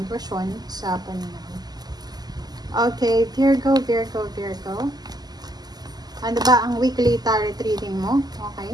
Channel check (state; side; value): late; left; 0.20 ms